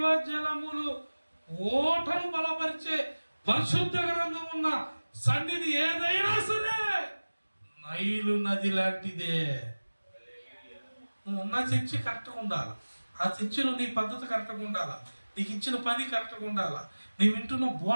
ఓటను బలపరిచే పరిశుద్ధ గ్రంథం ఉన్న సన్నిధి ఏదైనా సరే నైలు నది లాంటిదే. నువ్వు ఉన్న చర్చి కరెక్ట్గా ఉండాలి. ఆ చర్చిలో నీ పద్ధతి కరెక్ట్గా ఉండాలా, నీకు ఇచ్చిన పని కరెక్ట్గా ఉండాలా, నీ వింటున్న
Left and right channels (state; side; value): inverted; both; correlation -1.00